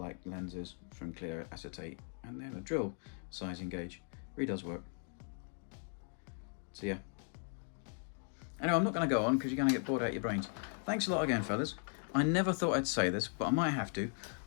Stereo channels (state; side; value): silent; right; 53 dB below the other